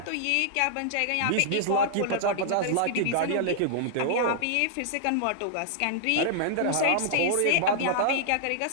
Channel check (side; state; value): both; different; correlation -0.01